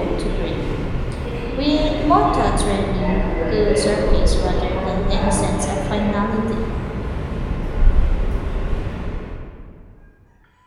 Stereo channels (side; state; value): both; identical; correlation 1.00